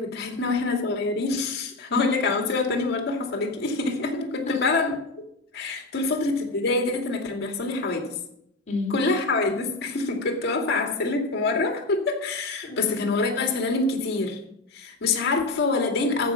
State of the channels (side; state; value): right; quieter; 3.0 dB